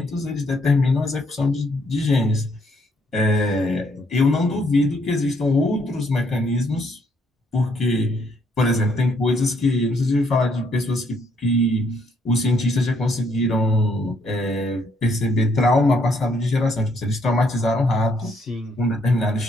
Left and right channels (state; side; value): normal; both; correlation 0.71